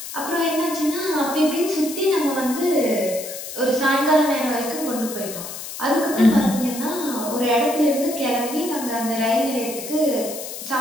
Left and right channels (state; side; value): noise; left; hiss, 9 dB below the sound